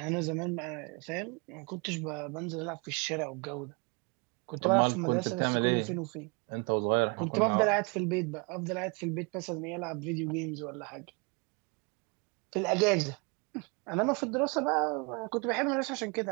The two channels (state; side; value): quieter; left; 31.2 dB